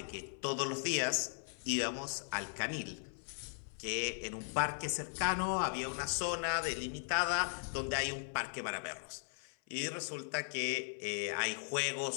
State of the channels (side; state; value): right; silent; 52 dB below the other